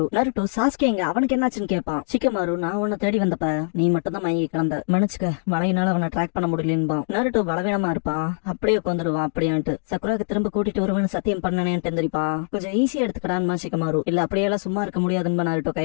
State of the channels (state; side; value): silent; right; digital silence